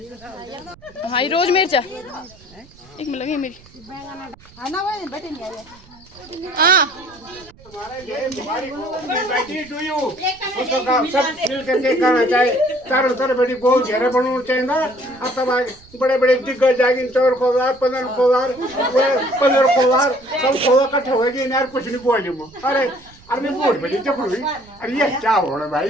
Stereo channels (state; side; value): noise; right; rumble, 25 dB below the sound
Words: से का हाँ रोज मिर्चा एक मिल लगी मेरी है ना भाई बेटे नहीं आए हाँ बेटी टू यू उसको काम सब मिल करके करना चाहिए चारों तरफ बेटी बहुत घेरा बनाना चाहिए ना अब तब बड़े बड़े दिग्गज जाएंगे चौर खोदार 15 खोदार सब खोदा इकट्ठे होएगी यार कुछ नहीं बोली मो अरे मैं बोल बेटी जब हुई अरे ये क्या हो रहा भाई